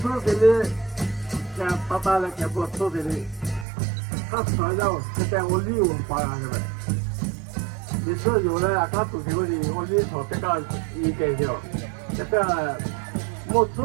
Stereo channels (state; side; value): drops out; left; at 3.7 s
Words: 的嘞，像爸爸来给我吃的嘞，他传到现在我利用发扬是呗。你说有了，他做这个的，我你说这个应该的，这个我